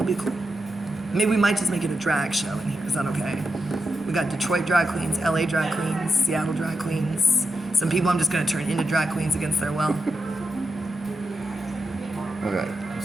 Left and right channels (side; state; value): both; normal; correlation 0.87